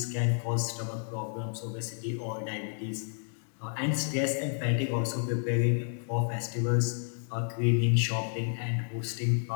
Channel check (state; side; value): silent; right; 57 dB below the other